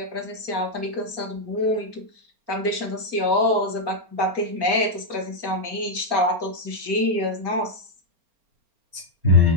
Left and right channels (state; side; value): late; left; 4.3 ms